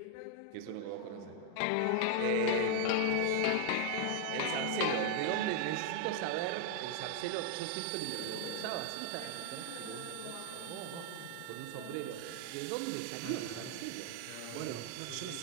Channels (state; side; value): different; both; correlation 0.00